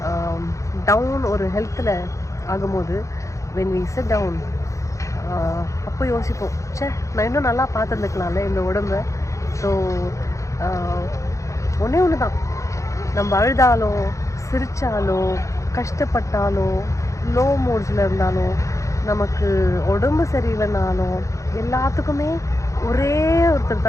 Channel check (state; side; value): late; right; 0.15 ms